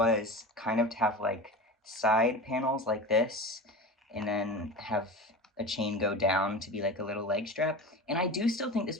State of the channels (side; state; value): both; normal; correlation 0.30